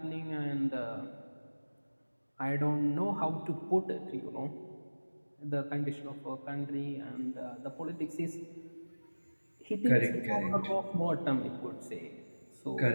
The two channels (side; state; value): both; inverted; correlation -1.00